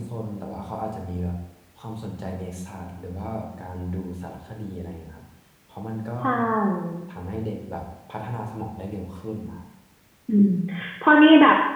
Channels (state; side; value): identical; both; correlation 1.00